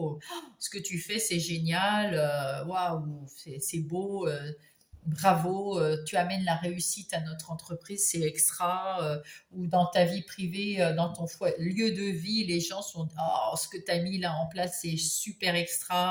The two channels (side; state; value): both; identical; correlation 1.00